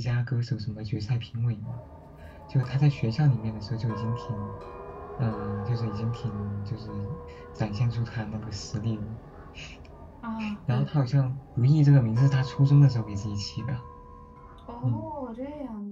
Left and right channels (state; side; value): identical; both; correlation 1.00